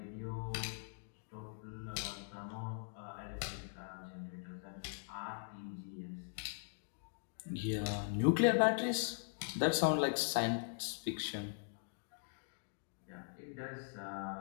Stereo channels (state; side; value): silent; right; digital silence